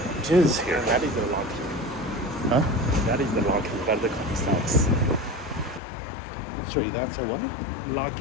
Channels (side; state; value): right; drops out; at 5.8 s